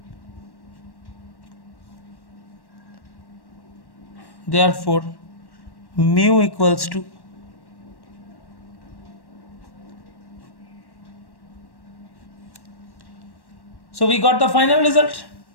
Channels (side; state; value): right; late; 1.1 ms